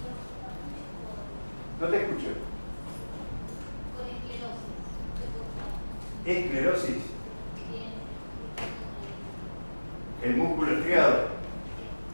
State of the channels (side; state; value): both; inverted; correlation -1.00